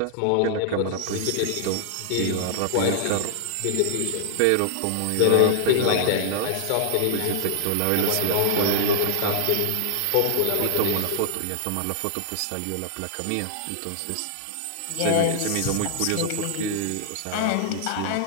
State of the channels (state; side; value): different; both; correlation -0.01